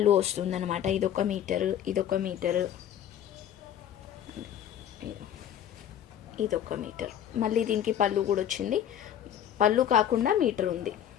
వస్తుంది అనమాట. ఇదొక మీటరు, ఇదొక మీటరు, ఇదొక మీటర్. మళ్ళీ దీనికి పళ్ళు కూడా వచ్చింది. పళ్ళు కాకుండా మీటర్ ఉంది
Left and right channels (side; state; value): right; quieter; 10.1 dB